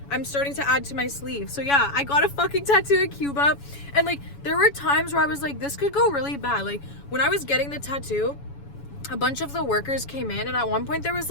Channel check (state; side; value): late; right; 7.1 ms